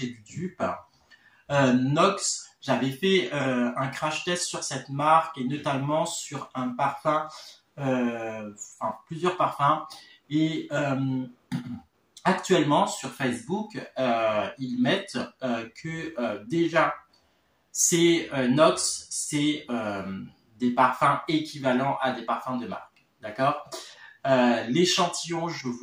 du dupe, Nox. J'avais fait un crash test sur cette marque et notamment sur un parfum, enfin plusieurs parfums. Et actuellement sur Facebook, ils mettent que déjà ces Nox, c'est des parfums équivalents à des parfums de marque. D'accord? L'échantillon, je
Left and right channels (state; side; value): identical; both; correlation 1.00